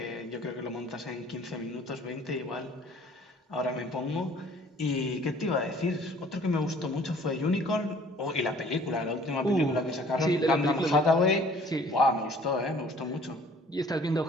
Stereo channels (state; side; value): normal; both; correlation 0.54